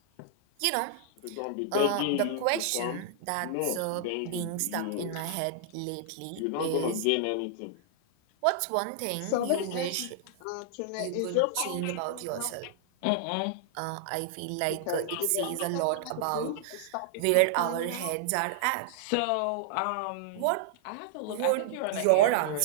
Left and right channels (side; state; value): both; different; correlation -0.01